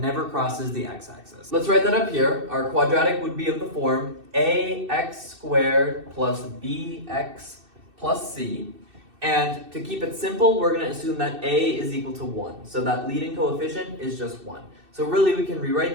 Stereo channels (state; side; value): late; left; 2.6 ms